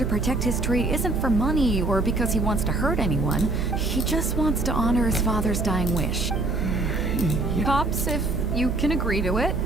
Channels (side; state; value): right; noise; hum, 4 dB below the sound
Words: protect his tree isn't for money or because he wants to hurt anyone. He just wants to honor his father's dying wish. Pops, if you can agree to it,